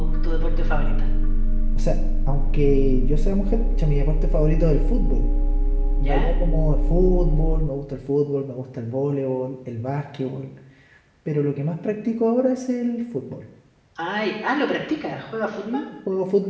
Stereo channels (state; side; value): identical; both; correlation 1.00